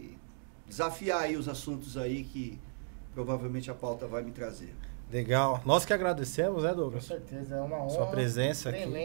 desafiar aí os assuntos aí que provavelmente a pauta vai me trazer. Legal. Nós que agradecemos, né, Douglas? Com certeza, é uma honra. Sua presença aqui.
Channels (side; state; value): left; silent; digital silence